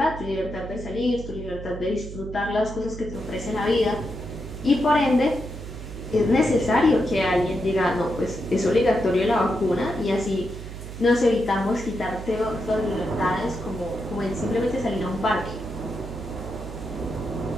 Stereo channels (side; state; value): right; noise; hum, 10 dB below the sound